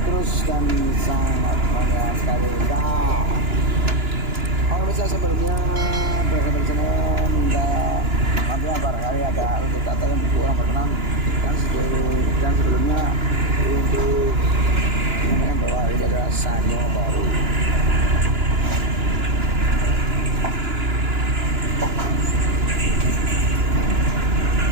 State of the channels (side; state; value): left; late; 2.9 ms